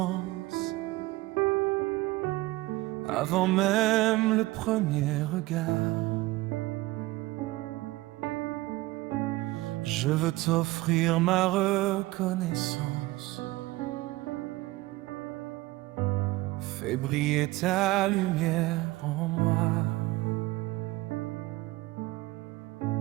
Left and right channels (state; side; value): quieter; left; 19.6 dB